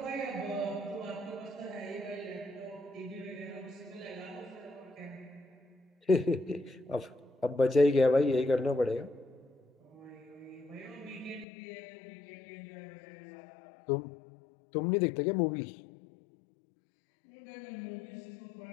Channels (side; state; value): right; drops out; at 11.5 s